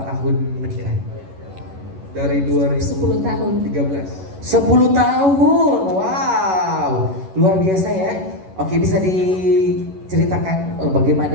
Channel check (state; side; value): late; left; 11 ms